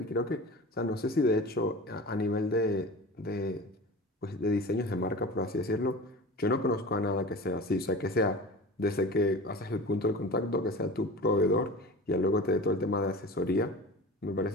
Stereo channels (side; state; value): both; normal; correlation 0.35